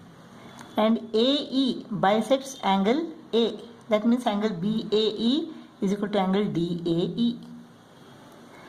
and AE bisects angle A. That means angle BAE is equal to angle DAE.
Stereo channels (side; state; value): both; identical; correlation 1.00